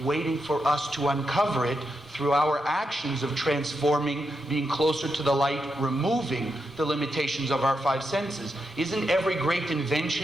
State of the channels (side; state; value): both; normal; correlation 0.84